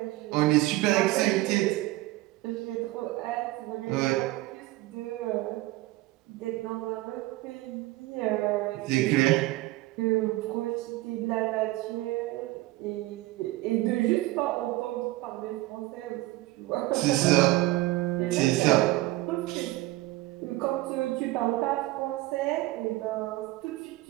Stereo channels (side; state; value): left; quieter; 18.7 dB